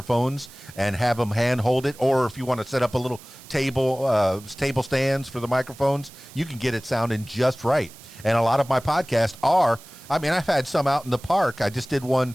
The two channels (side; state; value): right; noise; hiss, 21 dB below the sound